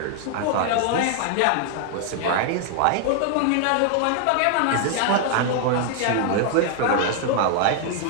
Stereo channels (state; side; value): different; both; correlation 0.00